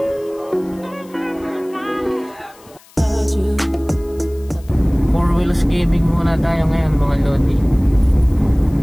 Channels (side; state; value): left; noise; hiss, 27 dB below the sound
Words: Four wheels gaming muna tayo ngayon mga lodi.